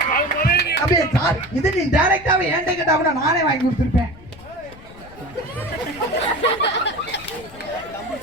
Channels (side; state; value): left; noise; rumble, 20 dB below the sound